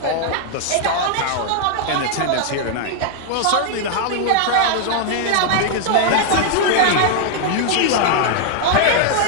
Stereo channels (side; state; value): both; different; correlation -0.01